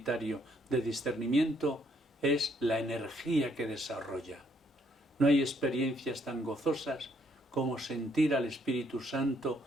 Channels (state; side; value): normal; both; correlation 0.69